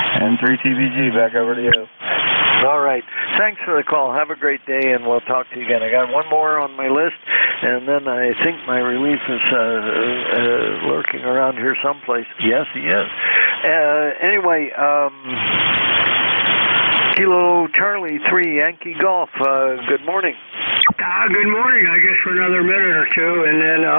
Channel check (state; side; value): inverted; both; correlation -1.00